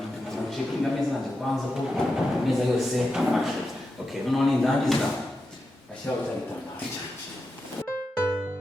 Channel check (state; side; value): normal; both; correlation 0.89